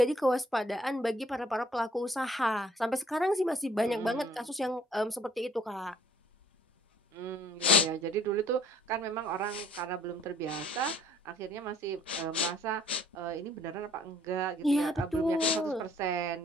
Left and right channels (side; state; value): both; normal; correlation 0.60